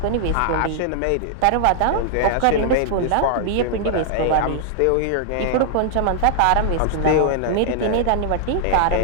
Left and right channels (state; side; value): different; both; correlation -0.01